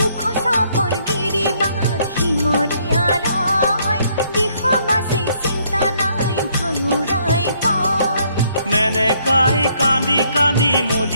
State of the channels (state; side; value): inverted; both; correlation -0.68